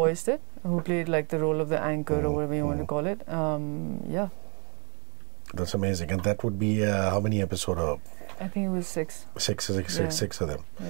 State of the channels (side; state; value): left; quieter; 35.2 dB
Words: it, who played like the role of the anchor or whatever you want to call it. Yeah. That's amazing. And that would be how many episodes? I think it was 6. Six of them.